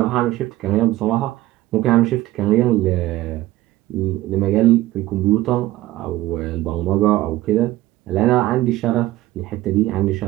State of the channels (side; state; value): left; quieter; 16.4 dB